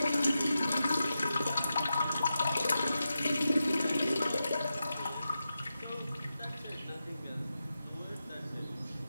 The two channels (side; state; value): both; inverted; correlation -0.90